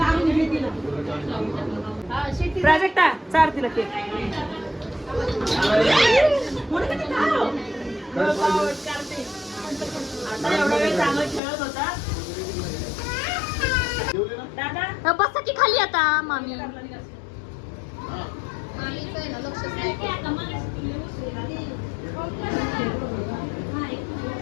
प्राजक्ता चार तिला केक. एवढा वेळ चांगला खेळत होता दादा. बसा की खाली आता मामी.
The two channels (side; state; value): right; drops out; at 11.4 s